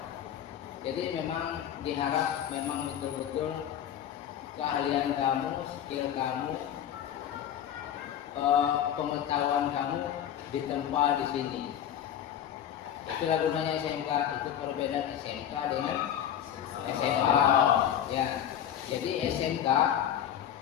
Jadi memang diharap memang betul-betul keahlian kamu, skill kamu, pengetahuan kamu ditempa di sini. Itulah gunanya SMK. Itu perbedaan SMK dengan SMA. Ya, jadi SMK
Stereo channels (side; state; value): right; quieter; 10.0 dB